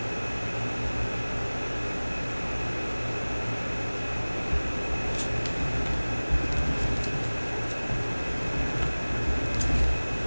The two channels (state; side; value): inverted; both; correlation -1.00